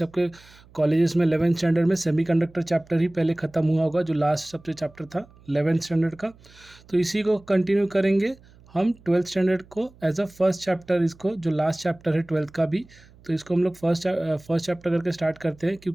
कॉलेजेस में 11th स्टैंडर्ड में सेमीकंडक्टर चैप्टर ही पहले ख़त्म हुआ होगा, जो लास्ट सबसे चैप्टर था 11th स्टैंडर्ड का। तो इसी को कंटिन्यू करेंगे हम 12th स्टैंडर्ड को एज अ फर्स्ट चैप्टर, इसको जो लास्ट चैप्टर है 12th का भी, तो इसको हम लोग फर्स्ट चैप्टर करके स्टार्ट करते हैं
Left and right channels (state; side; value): noise; right; hum, 26 dB below the sound